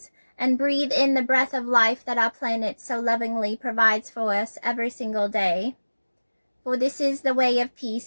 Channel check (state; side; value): inverted; both; correlation -1.00